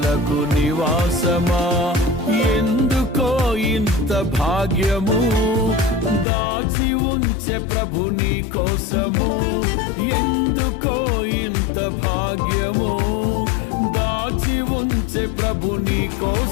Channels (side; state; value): right; drops out; at 6.2 s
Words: నివాసమా. ఎందుకో ఇంత భాగ్యము దాచి ఉంచే ప్రభు నీ కోసము, ఎందుకో ఇంత భాగ్యము దాచి ఉంచే ప్రభు నీ